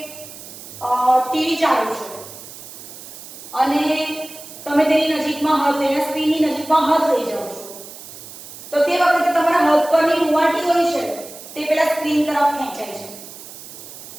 ટીવી ચાલુ છે અને તમે તેની નજીકમાં હાથ લઈને સ્ક્રીનની નજીકમાં હાથ લઈ જાઓ છો, તો તે વખતે તમારા હાથ પરની રૂંવાટી હોય છે તે પેલા સ્ક્રીન તરફ ખેંચાય છે.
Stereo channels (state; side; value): noise; right; hiss, 15 dB below the sound